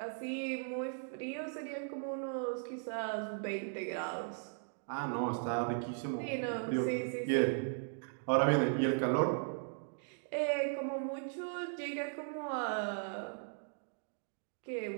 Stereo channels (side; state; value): left; silent; digital silence